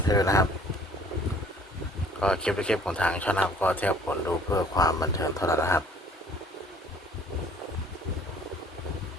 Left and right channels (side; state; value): both; normal; correlation 0.55